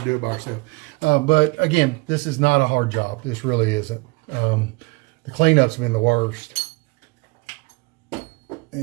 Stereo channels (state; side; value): quieter; left; 26.3 dB